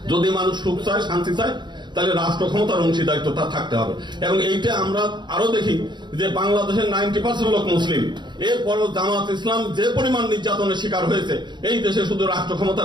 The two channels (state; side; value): late; left; 0.22 ms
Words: যদি মানুষ সুখ চায় শান্তি চায় তাহলে রাষ্ট্র ক্ষমতার অংশীদারিত্ব তার থাকতে হবে। এবং এইটা আমরা আরো দেখি যে বাংলাদেশের 90% লোক মুসলিম, এরপরও জামাত ইসলাম যে পরিমাণ নির্যাতনের শিকার হয়েছে এই দেশে শুধু রাষ্ট্র